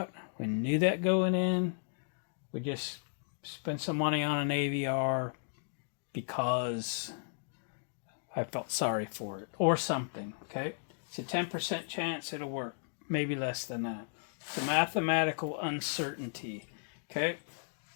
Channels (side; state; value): right; silent; digital silence